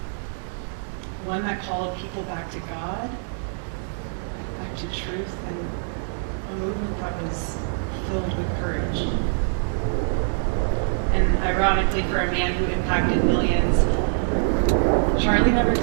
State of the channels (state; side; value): silent; left; digital silence